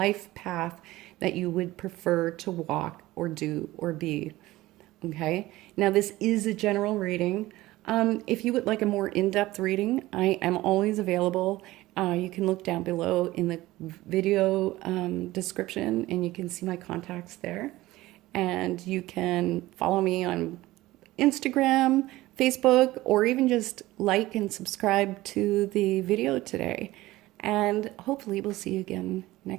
path that you would prefer to walk or do or be. Okay. Now, this is a general reading. If you would like a more in-depth reading, I am always available. You can look down below in the video description, and you can see my contacts there. And you can follow me on Instagram, Facebook, or even just like and subscribe to the video today. And hopefully we'll see you again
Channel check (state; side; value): quieter; left; 17.7 dB